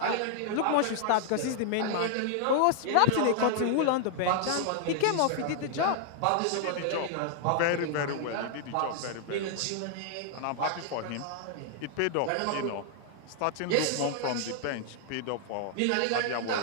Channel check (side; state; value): both; different; correlation 0.00